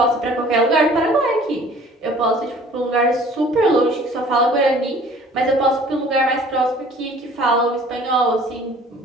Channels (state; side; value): normal; both; correlation 0.51